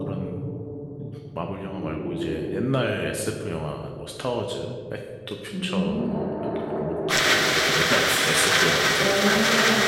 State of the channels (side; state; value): both; identical; correlation 1.00